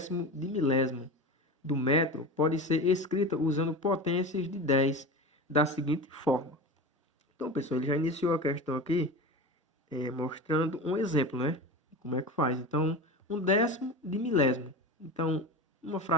de milésimo do metro pode ser escrita usando potências de 10 da seguinte forma. Então pessoal, ele já iniciou a questão aqui mostrando um exemplo, né? Como é que faz? Então, 1/10 de milésimo. Então, uma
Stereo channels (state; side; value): normal; both; correlation 0.28